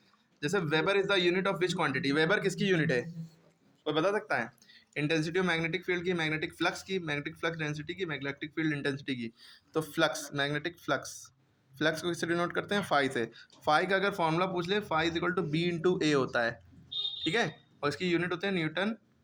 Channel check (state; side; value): identical; both; correlation 1.00